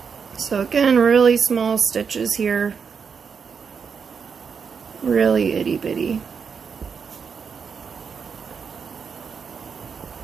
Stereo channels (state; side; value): quieter; left; 6.2 dB